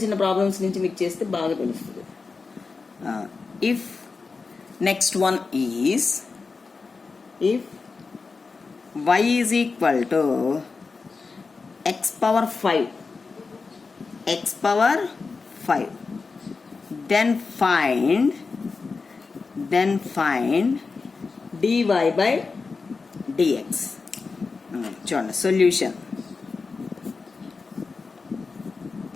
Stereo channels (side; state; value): right; quieter; 4.4 dB